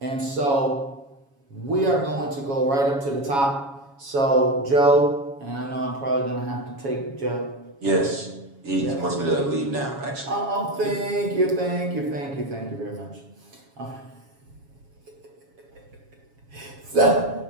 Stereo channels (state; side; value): late; left; 7.2 ms